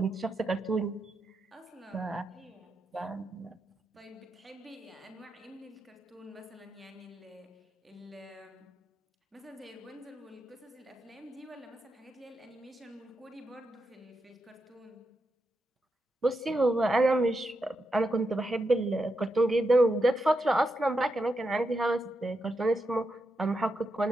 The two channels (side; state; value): both; normal; correlation 0.85